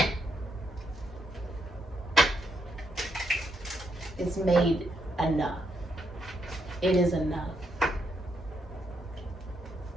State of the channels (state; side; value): normal; both; correlation 0.78